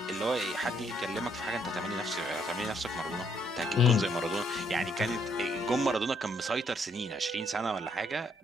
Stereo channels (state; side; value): normal; both; correlation 0.70